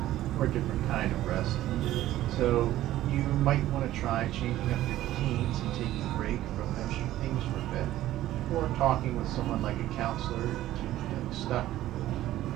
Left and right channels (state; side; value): quieter; left; 14.3 dB